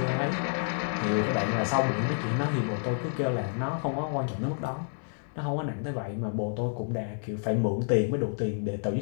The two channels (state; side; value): silent; right; digital silence